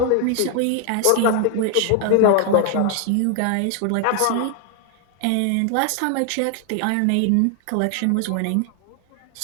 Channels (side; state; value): both; different; correlation 0.00